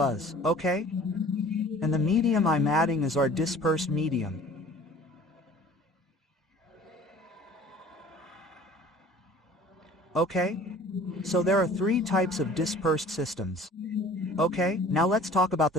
Okay? And the medium I'm adding is our dispersed medium. Okay? So there are three types of dispersed systems. Okay, now let's talk about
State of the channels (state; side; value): normal; both; correlation 0.48